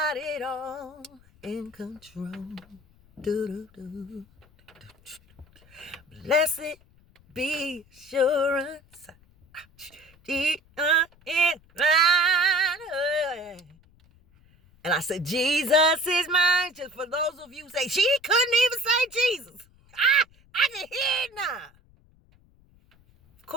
it all in control. Do-do-do. Blessed be assurance. And I said, Jesus is mine. Just for those of you who say, she couldn't even say Jesus. I can hear it now. Of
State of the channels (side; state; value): left; noise; rumble, 29 dB below the sound